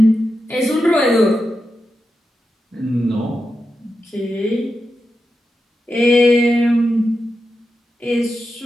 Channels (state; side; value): normal; both; correlation 0.89